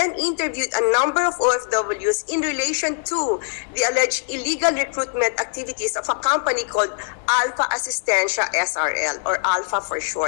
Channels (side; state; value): right; silent; 58 dB below the other